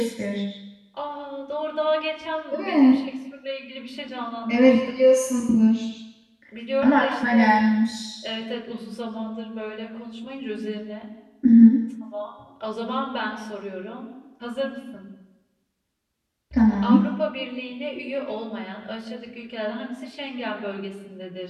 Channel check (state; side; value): identical; both; correlation 1.00